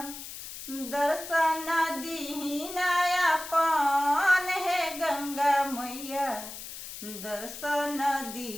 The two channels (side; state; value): left; noise; hiss, 11 dB below the sound